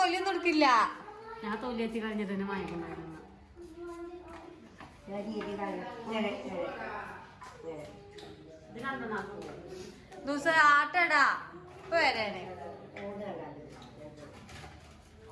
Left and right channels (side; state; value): both; identical; correlation 1.00